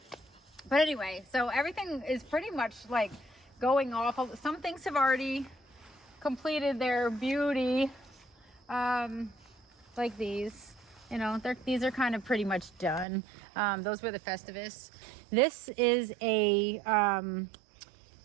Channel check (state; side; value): drops out; left; at 13.1 s